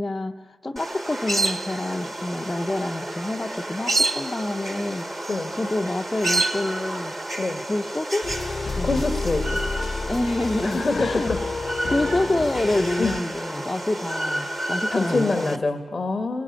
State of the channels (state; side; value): normal; both; correlation 0.93